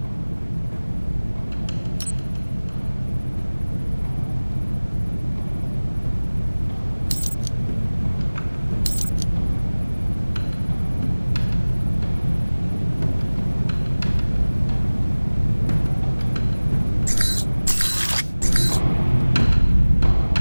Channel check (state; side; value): inverted; both; correlation -1.00